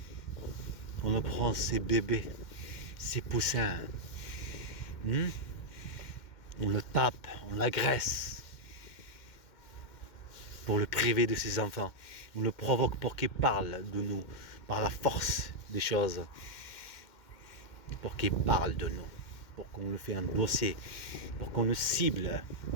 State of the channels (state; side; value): late; right; 2.1 ms